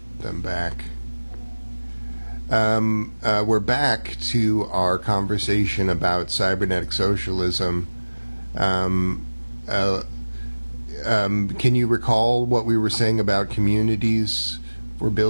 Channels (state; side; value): inverted; both; correlation -1.00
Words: put them back. We're back to our conversation about cybernetic socialism. Can you recall what we were saying about communities for